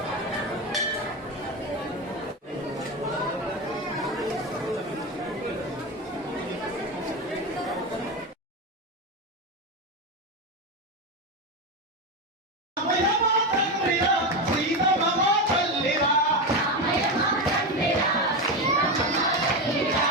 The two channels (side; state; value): both; normal; correlation 0.15